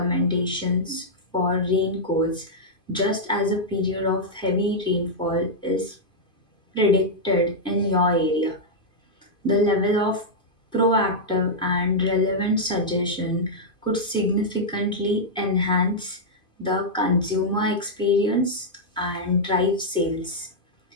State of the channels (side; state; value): right; late; 2.5 ms